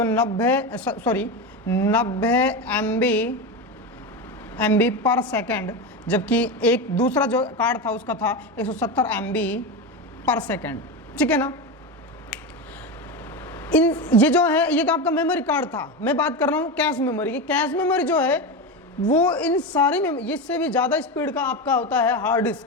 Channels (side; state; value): both; normal; correlation 0.18